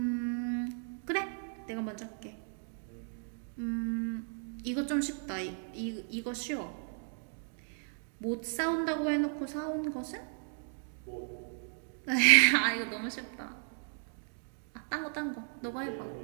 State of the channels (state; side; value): silent; left; 54 dB below the other